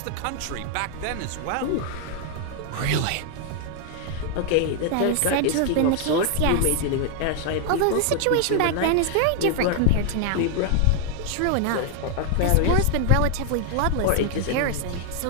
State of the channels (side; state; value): both; different; correlation 0.00